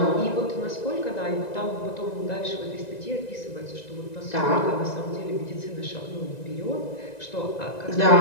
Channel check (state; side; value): late; right; 1.9 ms